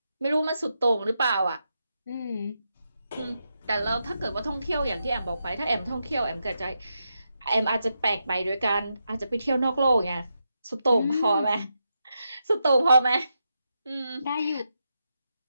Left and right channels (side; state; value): both; inverted; correlation -0.85